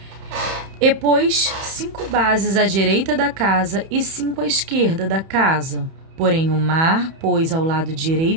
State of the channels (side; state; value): left; late; 31 ms